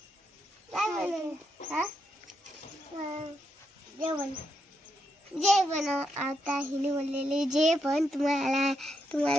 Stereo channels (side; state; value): both; normal; correlation 0.81